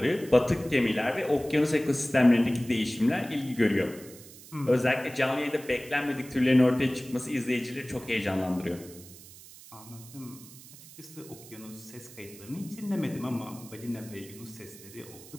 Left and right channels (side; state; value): right; noise; hiss, 19 dB below the sound